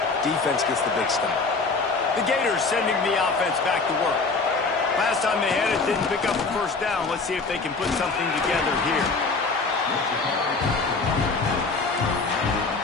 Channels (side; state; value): right; quieter; 4.1 dB